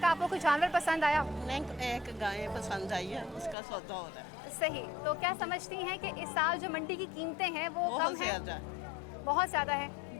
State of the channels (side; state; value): right; drops out; at 3.6 s